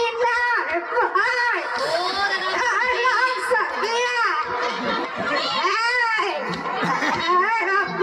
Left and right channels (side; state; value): both; identical; correlation 1.00